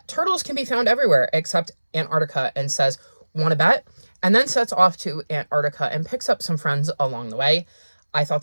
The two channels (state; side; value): inverted; both; correlation -1.00